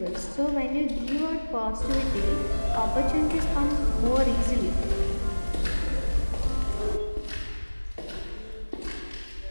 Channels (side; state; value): both; inverted; correlation -1.00